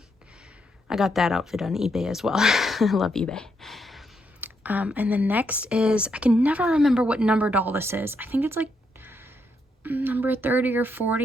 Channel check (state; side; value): normal; both; correlation 0.78